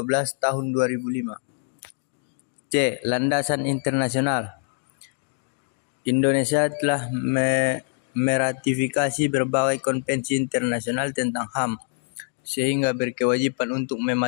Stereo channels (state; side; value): silent; right; 62 dB below the other